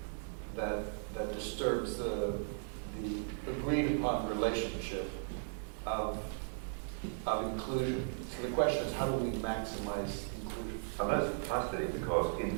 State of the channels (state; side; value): silent; left; digital silence